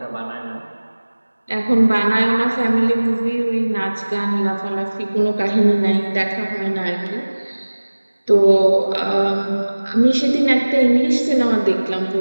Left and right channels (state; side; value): inverted; both; correlation -1.00